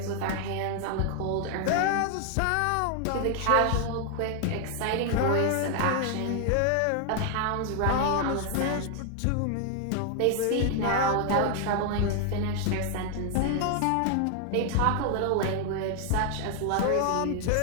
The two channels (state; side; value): different; both; correlation 0.00